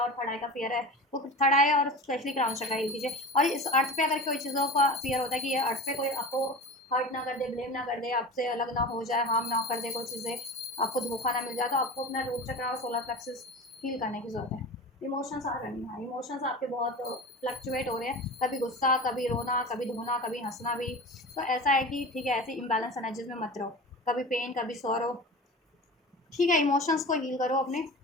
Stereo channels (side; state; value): both; normal; correlation 0.33